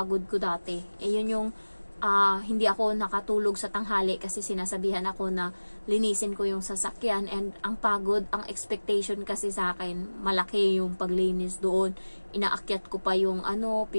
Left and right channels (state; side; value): inverted; both; correlation -1.00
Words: ko dati. Yun yung hindi ako nakatulog sa tanghali kasi sinasabihan ako na linisin ko yung sasakyan. And ang pagod, ang expectation kasi sa akin, malaki yung paglinis doon. Inaakyat ko pa yung